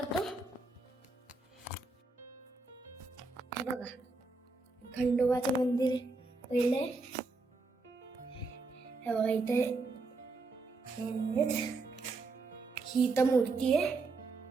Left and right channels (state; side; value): quieter; left; 3.6 dB